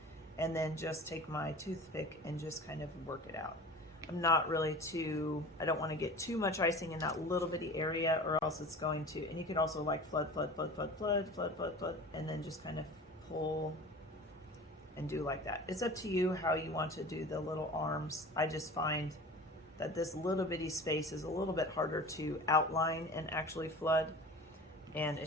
And then just take my toothpick and just kind of work it out. I'm not really I don't want to get too much icing in that little bitty area, or else it's going to, and you could also like flood, and then just kind of pull and do like that. It's up to you how you want to do the little arms. I just find that this little bitty space is a little bit harder to outline and actually flood, and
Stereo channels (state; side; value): normal; both; correlation 0.38